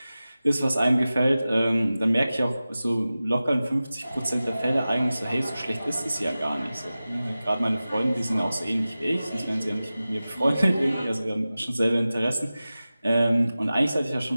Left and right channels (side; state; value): both; inverted; correlation -0.96